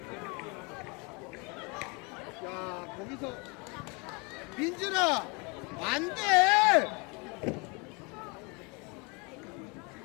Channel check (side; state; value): right; quieter; 29.8 dB